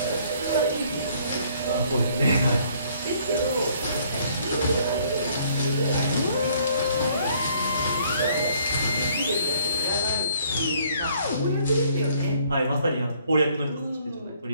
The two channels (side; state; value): both; inverted; correlation -0.62